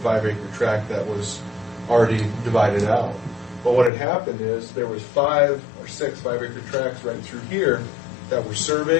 tract that was already divided out. But what had happened is there was 5 or 6 5-acre tracts right through here that were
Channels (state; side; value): drops out; right; at 3.9 s